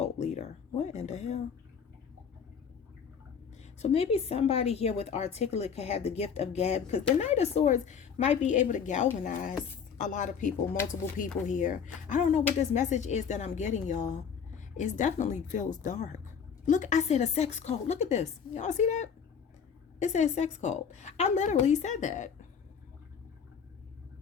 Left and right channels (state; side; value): quieter; right; 7.0 dB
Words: leader. What in the hell? So maybe somebody here with articulate could have the gift of gab, because the Knight of Swords might be able to galvanize a lot of people, multiple people here. I don't know what this message is that I'm getting, y'all. It definitely feels dark. Look, I said a sex cult. Look at this. Y'all see that? It says sex cult. I literally said that.